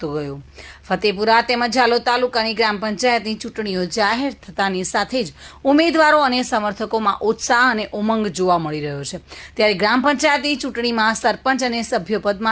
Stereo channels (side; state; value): both; identical; correlation 1.00